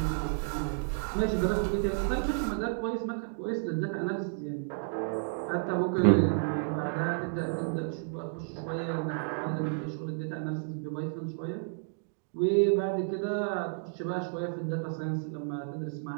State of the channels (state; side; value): silent; left; digital silence